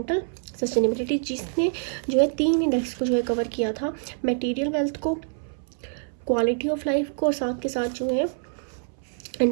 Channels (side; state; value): left; silent; 60 dB below the other